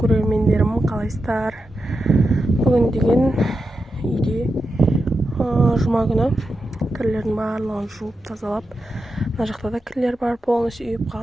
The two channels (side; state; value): both; normal; correlation 0.88